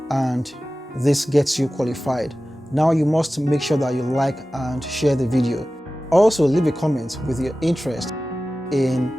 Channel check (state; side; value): normal; both; correlation 0.96